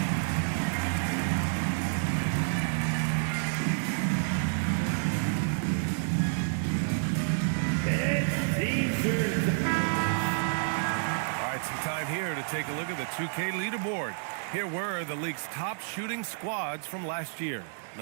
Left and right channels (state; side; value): silent; left; digital silence